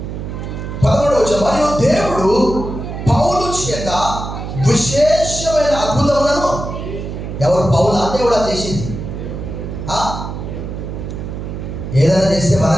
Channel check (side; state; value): right; noise; hum, 7 dB below the sound